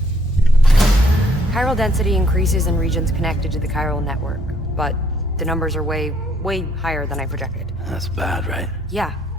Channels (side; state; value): both; normal; correlation 0.65